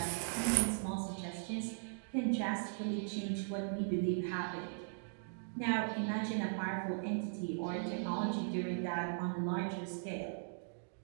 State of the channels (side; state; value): left; silent; digital silence